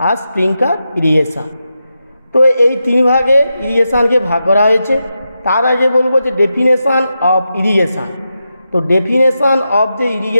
আর স্প্রিংকলার ইরিগেশন। তো এই তিন ভাগে ইরিগেশনকে ভাগ করা হয়েছে। তার আগে বলবো যে ডেফিনেশন অফ ইরিগেশন। তো ডেফিনেশন অফ যে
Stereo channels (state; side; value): inverted; both; correlation -0.88